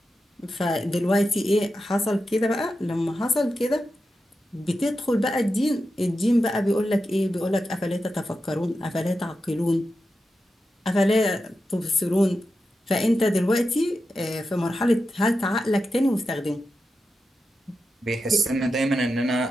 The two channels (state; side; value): normal; both; correlation 0.89